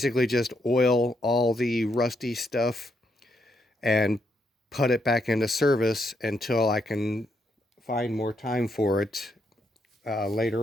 just oil all the rusty stuff and put it back into service until I can find more time for it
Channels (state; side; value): normal; both; correlation 0.78